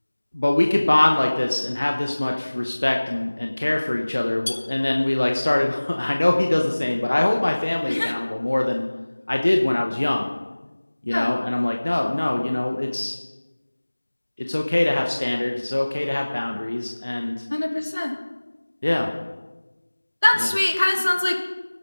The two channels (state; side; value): inverted; both; correlation -1.00